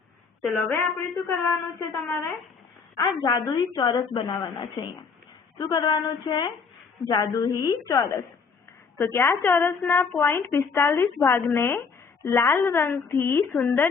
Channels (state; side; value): quieter; right; 5.4 dB